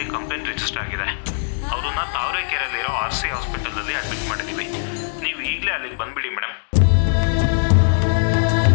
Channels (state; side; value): silent; right; digital silence